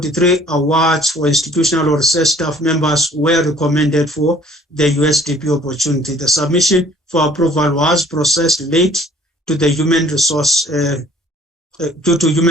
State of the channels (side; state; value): both; normal; correlation 0.56